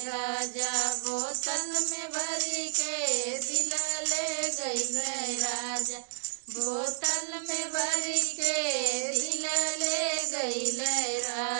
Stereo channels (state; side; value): silent; left; digital silence